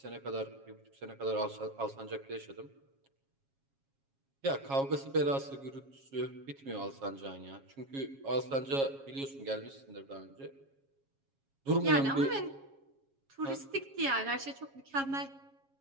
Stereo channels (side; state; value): left; late; 7.3 ms